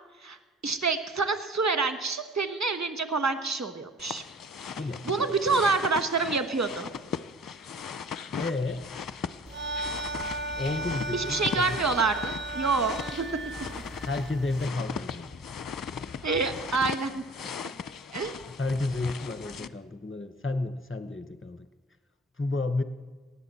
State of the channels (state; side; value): normal; both; correlation 0.44